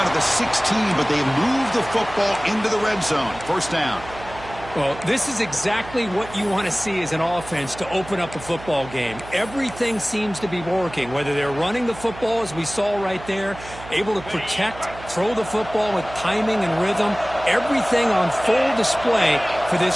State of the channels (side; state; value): right; noise; hum, 15 dB below the sound